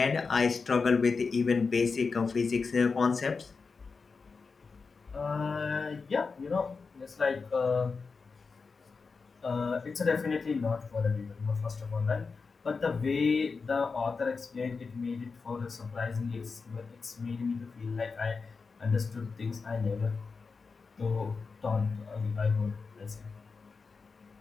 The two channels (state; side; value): quieter; right; 4.7 dB